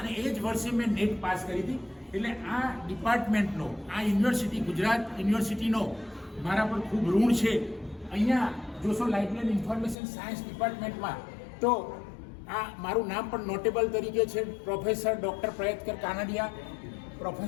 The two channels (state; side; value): drops out; right; at 10.0 s